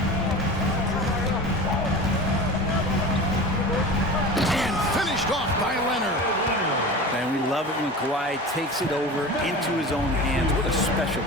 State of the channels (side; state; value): both; normal; correlation 0.33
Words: And finished off by Leonard. And we love it when Kawhi takes it over into his own hands. What a special